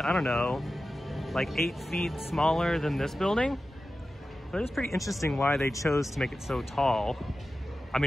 I don't know, like 8 feet smaller than this building. But it's pretty interesting why they chose to make it so tall. I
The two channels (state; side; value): normal; both; correlation 0.94